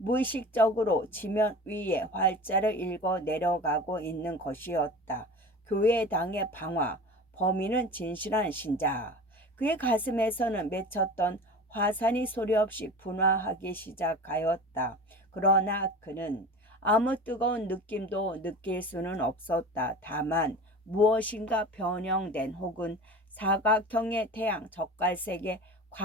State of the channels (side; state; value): both; normal; correlation 0.36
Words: 지면 위에 활자를 읽어 내려가고 있는 것이었다. 교회당의 방화, 범인은 진실한 신자. 그의 가슴에서는 맺혔던 화산이 소리 없이 분화하기 시작하였다. 그러나 그는 아무 뜨거운 느낌도 느낄 수는 없었다. 다만 무엇인가 변형된 혹은 사각형의 태양 젓갈색의